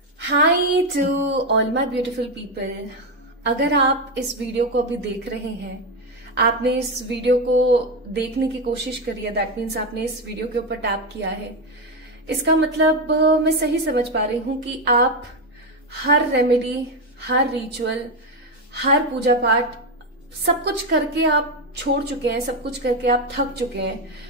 High to all my beautiful people. अगर आप इस वीडियो को अभी देख रहे हैं, आपने इस वीडियो को देखने की कोशिश करी है, दैट मीन्स आपने इस वीडियो के ऊपर टैप किया है। इसका मतलब मैं सही समझ पा रही हूं कि आप हर रेमेडी, हर रिचुअल, हर पूजा पाठ सब कुछ करके आप छोड़ चुके हैं, सब कुछ करके आप थक चुके हैं,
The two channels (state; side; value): normal; both; correlation 0.09